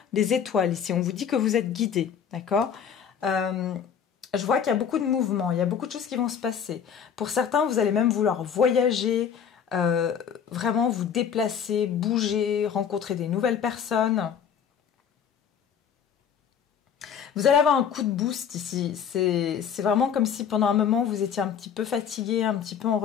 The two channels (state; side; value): quieter; right; 7.7 dB